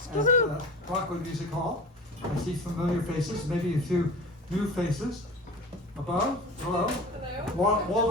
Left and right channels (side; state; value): both; normal; correlation 0.35